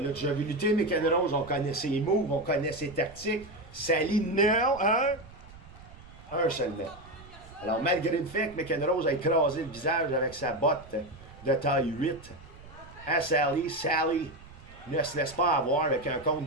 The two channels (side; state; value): right; noise; rumble, 20 dB below the sound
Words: déjà vu lutter, McEnroe, on connaît ses moves, on connaît ses tactiques. Sally, non! Un seulement. Alors, malgré le fait que McEnroe a écrasé le visage avec sa botte de taille 8, à Sally ne se laisse pas avoir avec un compte